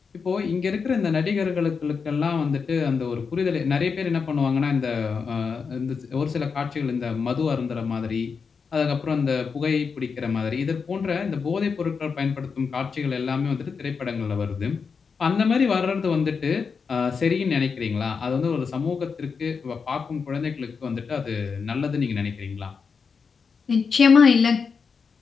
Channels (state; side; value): quieter; right; 5.5 dB